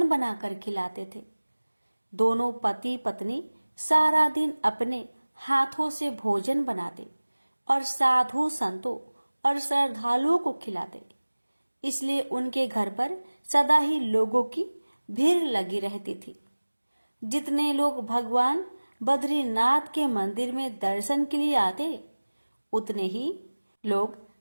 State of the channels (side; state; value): both; inverted; correlation -1.00